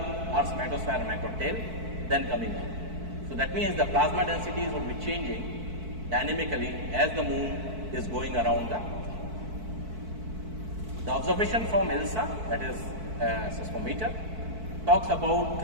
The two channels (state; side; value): late; left; 4.6 ms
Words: magnetosphere and macrotail, then coming up. So that means the plasma densities would be changing dynamically as the moon is going around the Earth. The observation from ILSA, that is seismometer, talks about